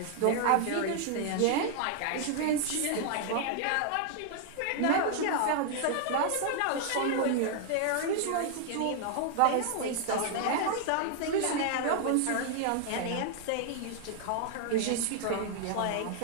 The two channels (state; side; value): different; both; correlation 0.00